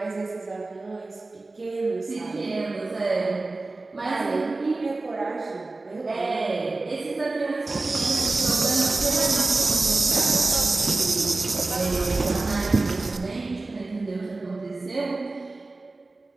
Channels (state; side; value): quieter; left; 3.3 dB